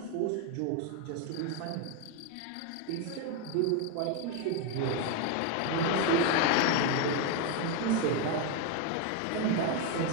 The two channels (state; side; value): different; both; correlation 0.02